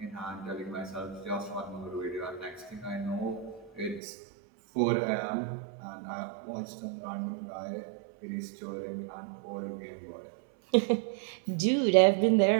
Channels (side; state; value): left; drops out; at 4.0 s